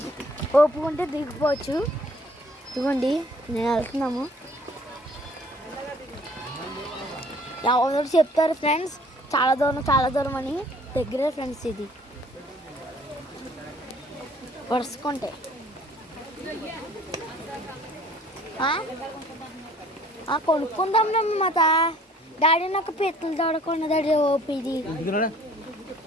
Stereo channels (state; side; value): normal; both; correlation 0.56